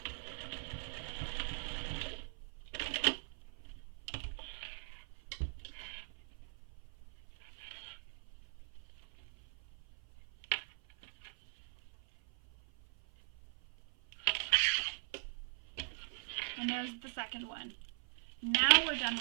And there's the second one. Now we're done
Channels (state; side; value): silent; left; 50 dB below the other